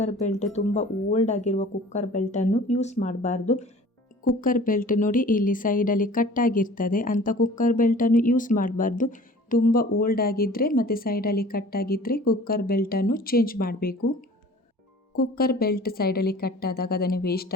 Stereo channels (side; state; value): both; normal; correlation 0.46